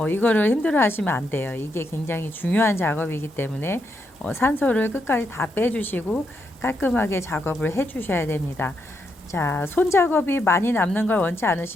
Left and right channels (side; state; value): both; normal; correlation 0.80